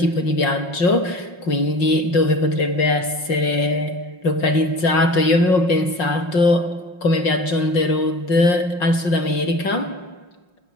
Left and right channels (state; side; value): late; right; 5.6 ms